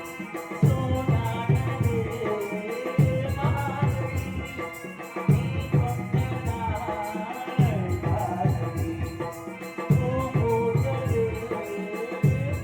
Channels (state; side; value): identical; both; correlation 1.00